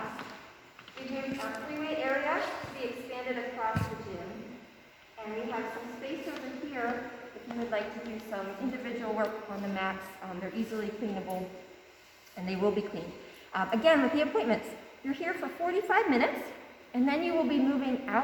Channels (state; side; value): identical; both; correlation 1.00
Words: We've moved our freeway area to be expanded across the gym. And we have some space over here if you would like to do some individual work on the mats. They're easily cleanable, and they will be cleaned. Again, with the appointments, you're here for 45 minutes, and then you will be moving